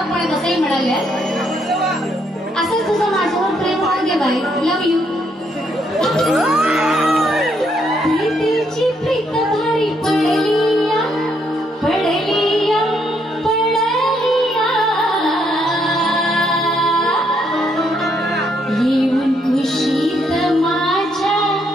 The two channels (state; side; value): normal; both; correlation 0.74